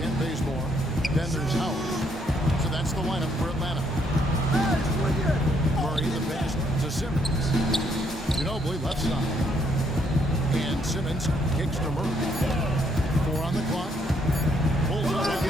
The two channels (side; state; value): both; normal; correlation 0.70